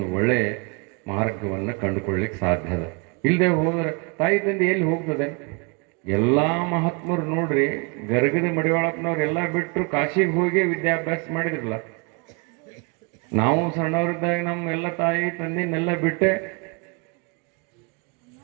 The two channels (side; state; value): left; quieter; 31.4 dB